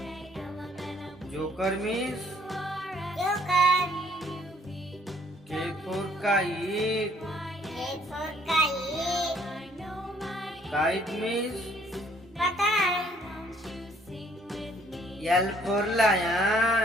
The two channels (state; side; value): normal; both; correlation 0.62